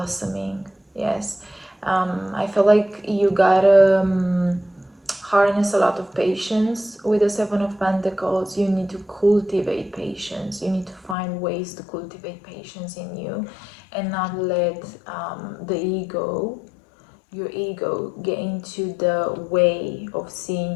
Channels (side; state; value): right; drops out; at 11.2 s